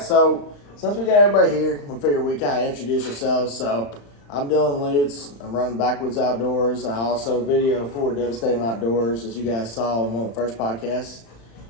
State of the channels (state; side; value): late; right; 35 ms